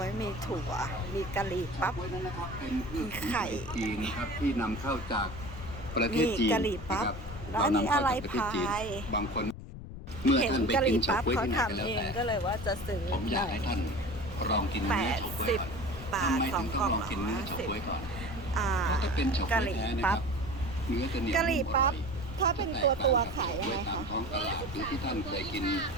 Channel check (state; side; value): noise; left; rumble, 11 dB below the sound